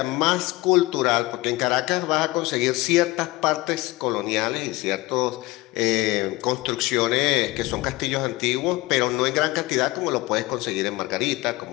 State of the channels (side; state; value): right; quieter; 20.7 dB